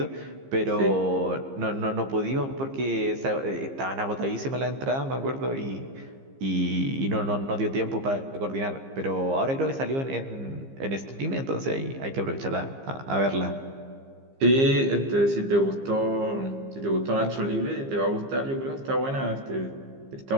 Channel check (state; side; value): late; left; 15 ms